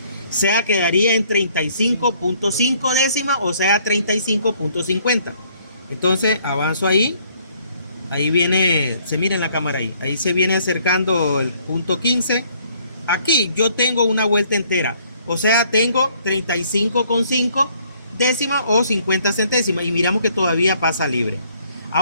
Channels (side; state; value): both; inverted; correlation -0.64